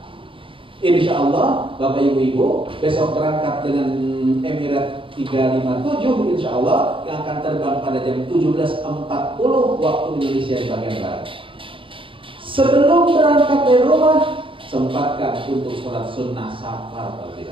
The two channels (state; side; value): late; left; 0.25 ms